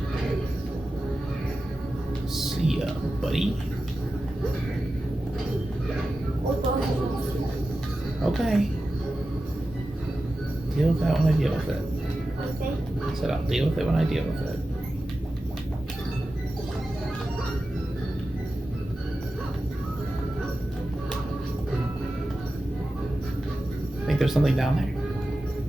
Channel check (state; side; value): normal; both; correlation 0.93